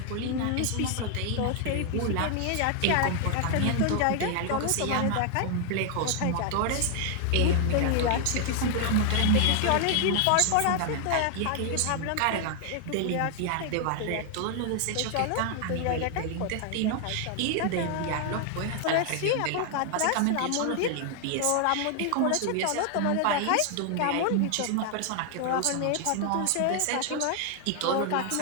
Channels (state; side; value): different; both; correlation 0.00